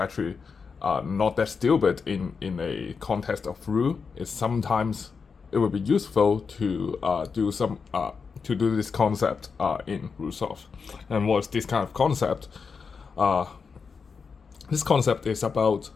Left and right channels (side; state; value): right; quieter; 5.4 dB